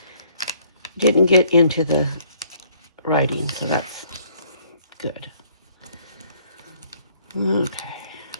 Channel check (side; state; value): both; inverted; correlation -0.63